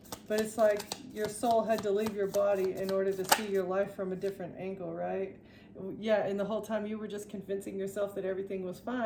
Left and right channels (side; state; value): both; identical; correlation 1.00